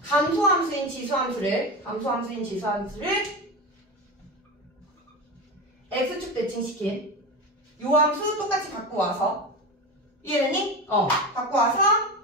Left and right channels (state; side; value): normal; both; correlation 0.23